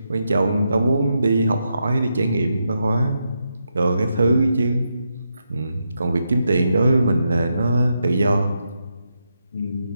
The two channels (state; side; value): inverted; both; correlation -0.84